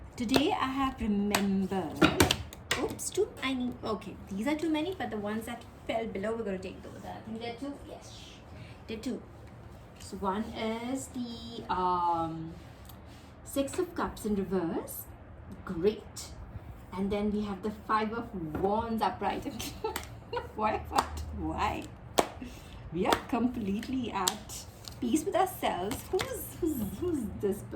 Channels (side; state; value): both; identical; correlation 1.00